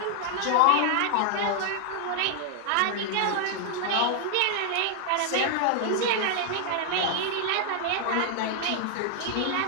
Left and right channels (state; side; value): different; both; correlation 0.00